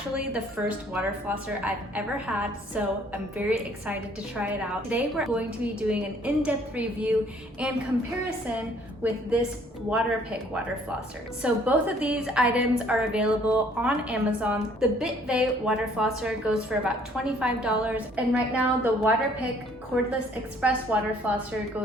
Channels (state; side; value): normal; both; correlation 0.60